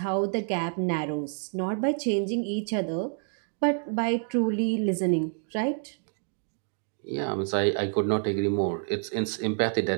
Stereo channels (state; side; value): silent; left; 59 dB below the other